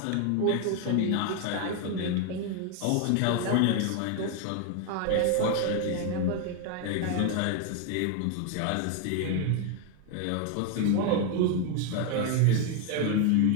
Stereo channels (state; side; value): different; both; correlation 0.01